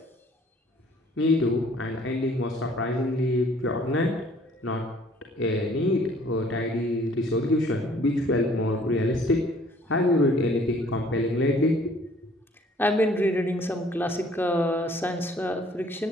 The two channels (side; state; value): both; normal; correlation 0.57